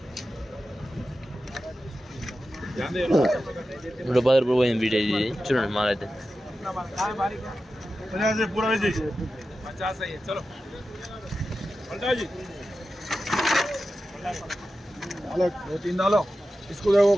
రూపాయలు పోయింది వీడియో. ఇది చూడండి మాల్. అయితే पूरा 50 है. चलो पलटा जी 2-3 डालो. इसको देखो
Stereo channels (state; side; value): normal; both; correlation 0.92